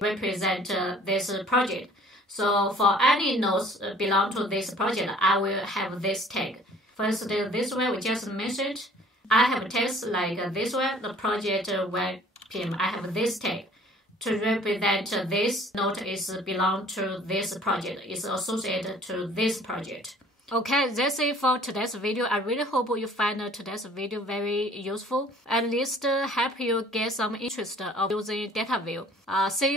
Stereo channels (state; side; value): normal; both; correlation 0.53